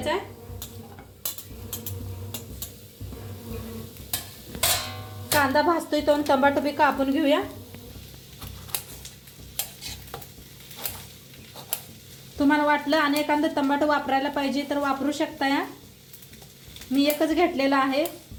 आहे। कांदा भाजतोय तो टमाटर बी कापून घेऊया। तुम्हाला वाटलं आणि एखादा टमाटर वापरायला पाहिजे तर वापरू शकता या, मी एकच घेतलेला आहे।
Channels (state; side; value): identical; both; correlation 1.00